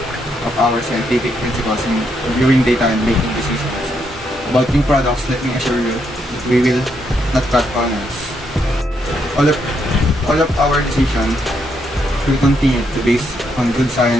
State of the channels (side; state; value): both; normal; correlation 0.77